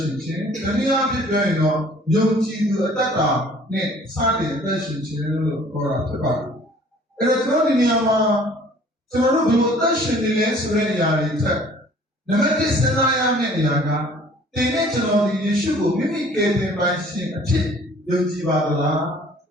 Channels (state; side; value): normal; both; correlation 0.53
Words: chin, and the other going on, young Jidu Tata, ne, Sadi attention chin or a tobacco. And a Troniniama, Toro attention in Yari tech. The medicine I am in Yaga, they naturally you should go mimic a pension chip, young Jibadala.